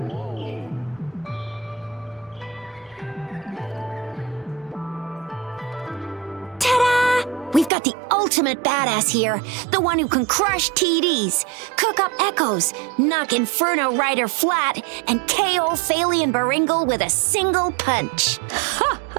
Ta-da! We've got the ultimate badass here, the one who can crush TDs, cook up echoes, knock Inferno Rider flat, and KO Phalian Baringle with a single punch. Ha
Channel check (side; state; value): left; drops out; at 7.7 s